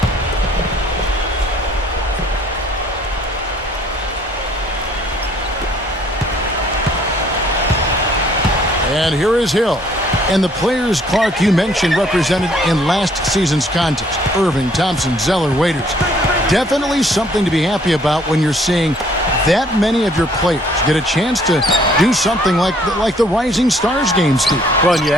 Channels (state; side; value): normal; both; correlation 0.61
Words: And here is Hill. And the players, Clark, you mentioned represented in last season's contest. Irving, Thompson, Zeller, Waiters. Definitely something to be happy about when you're seeing that many of your players get a chance to do something like the Rising Stars game, Steve. Well, and you